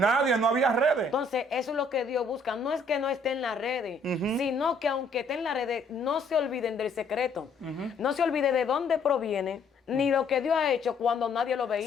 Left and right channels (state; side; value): quieter; right; 3.0 dB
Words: nadie, no había redes. Entonces, eso es lo que Dios busca. No es que no esté en las redes, sino que aunque esté en las redes, no se olviden del secreto. No se olvide de dónde proviene, ni lo que Dios ha hecho cuando nadie lo Sí,